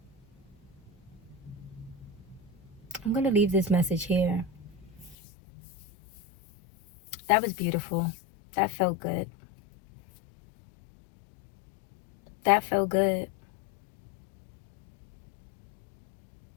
I'm going to leave this message here. That was beautiful. That felt good. That felt good.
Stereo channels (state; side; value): drops out; right; at 5.2 s